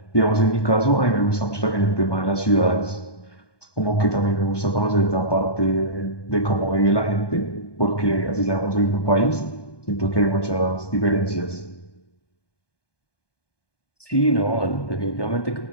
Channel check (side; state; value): right; late; 1.2 ms